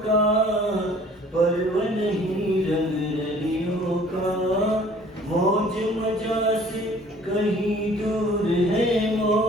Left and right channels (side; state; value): both; normal; correlation 0.53